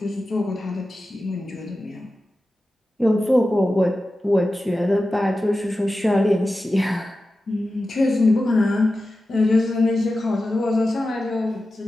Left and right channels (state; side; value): normal; both; correlation 0.93